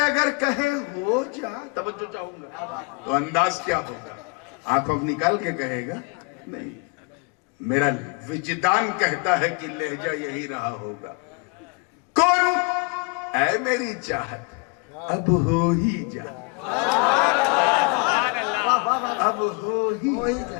اگر کہے ہو جا, توجہ چاہوں گا, تو انداز کیا ہوگا؟ آنکھوں نکال کے کہے گا نہیں. میرا وجدان کہتا ہے کہ لہجہ یہی رہا ہوگا. کون اے میری چاہت اب ہو ہی جا, اب ہو ہی جا.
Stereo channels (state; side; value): quieter; right; 31.4 dB